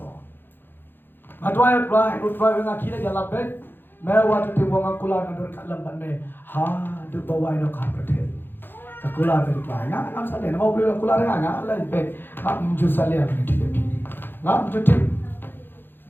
Ngadwai dengan kira jalan bet. Mewah tu tiwang kula ngadur kat lambat me. Ha, tu bawa ino kah berdet. Kula tu bawa. Ngam saleh. Mau beli kula ngam lain bet. Ngam menjual saleh begitu dia. Ngam cuti.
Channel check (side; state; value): right; late; 0.099 ms